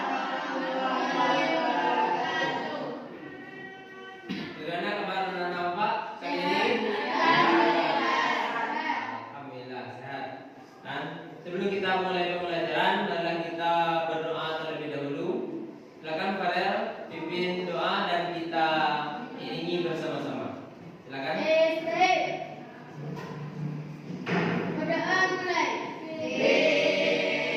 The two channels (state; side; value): identical; both; correlation 1.00